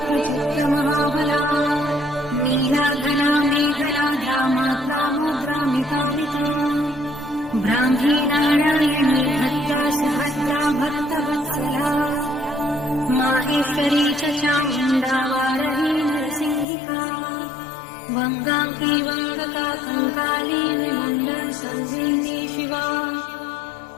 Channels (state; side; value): drops out; right; at 16.7 s